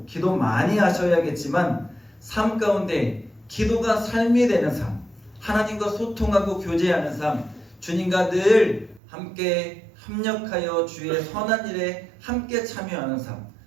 기도 많이 하셔야겠지만 삶 가운데 기도가 삶이 되는 삶, 하나님과 소통하고 교제하는 삶, 주님과 늘 함께 협력하여 주의 선한 일에 함께 참여하는 삶,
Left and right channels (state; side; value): drops out; left; at 9.0 s